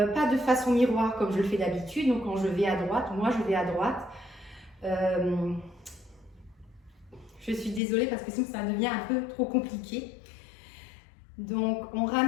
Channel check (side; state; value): right; drops out; at 7.8 s